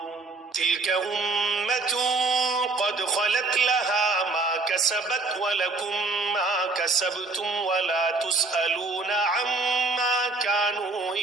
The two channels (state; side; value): quieter; left; 3.5 dB